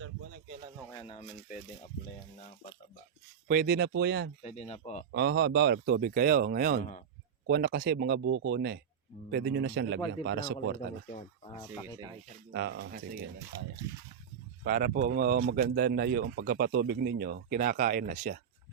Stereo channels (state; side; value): quieter; left; 7.8 dB